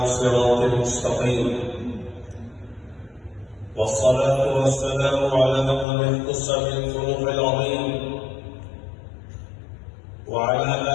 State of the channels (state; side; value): drops out; right; at 5.9 s